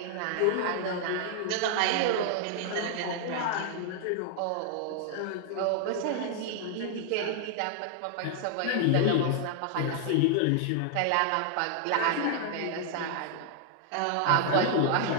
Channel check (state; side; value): different; both; correlation 0.00